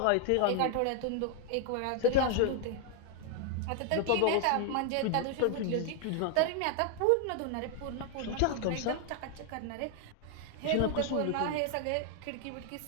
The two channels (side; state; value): both; different; correlation 0.00